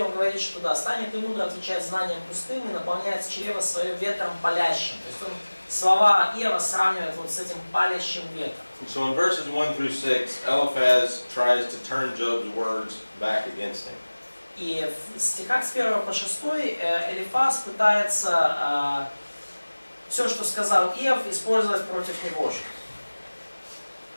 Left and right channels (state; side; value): inverted; both; correlation -1.00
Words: он говорит, что да, станет и мудро отвечать знанием пустым и наполняет чрево свое ветром палящим. То есть он слова Иова сравнивает вот с этим палящим ветром. So in verses 1 through 6, Eliphaz tries to turn Job's words back against him. И в стихах с 1 по 6 Элифаз пытается все, что сказал Иов, использовать против него же.